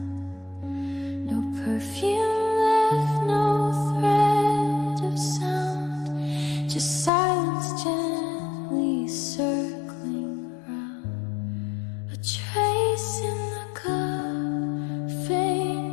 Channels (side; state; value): right; drops out; at 7.1 s